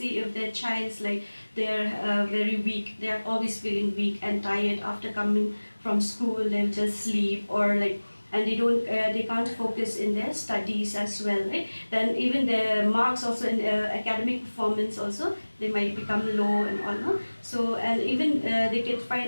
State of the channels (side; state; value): both; inverted; correlation -1.00